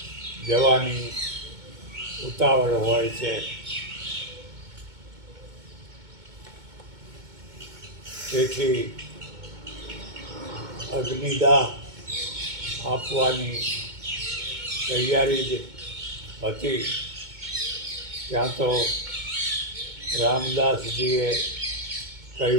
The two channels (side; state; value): left; late; 2.2 ms